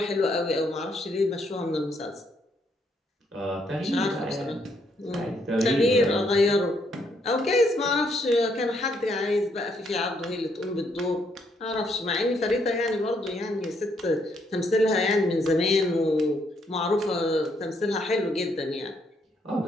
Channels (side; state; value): both; normal; correlation 0.73